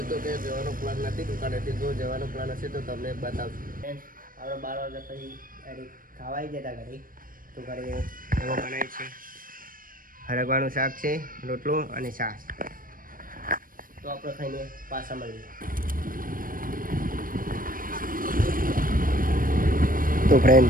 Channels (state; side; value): late; left; 0.41 ms